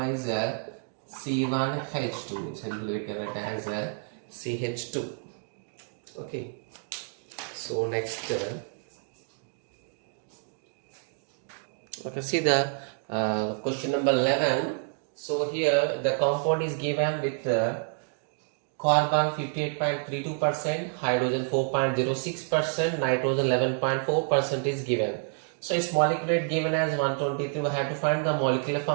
is C1H2. Simply we can write as CH2. Okay. So next, okay. See the question number 11. So here the compound is given with carbon 58.32%, hydrogen 4.06%, nitrogen 11.4% is given. So its molecular weight given as 123. We have to find the molecular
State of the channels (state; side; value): silent; left; 59 dB below the other